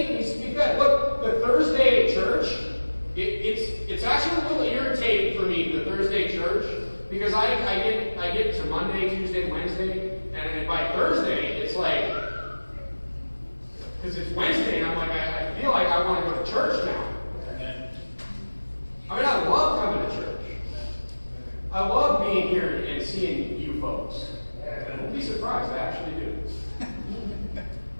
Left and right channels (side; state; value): both; inverted; correlation -1.00